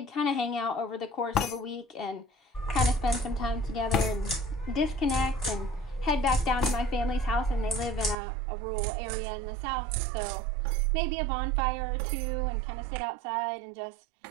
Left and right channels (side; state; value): left; drops out; at 8.2 s